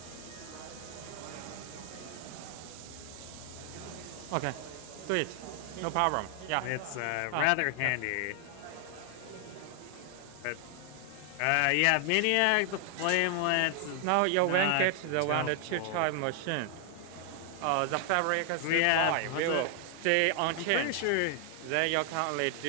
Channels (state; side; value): different; both; correlation 0.00